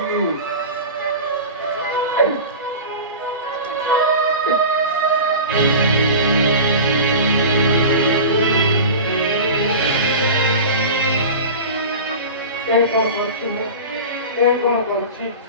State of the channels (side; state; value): both; inverted; correlation -0.31